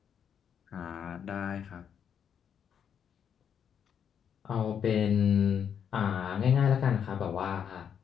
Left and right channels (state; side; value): quieter; right; 8.1 dB